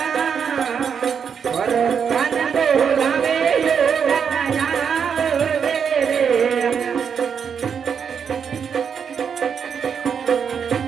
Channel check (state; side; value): quieter; left; 7.0 dB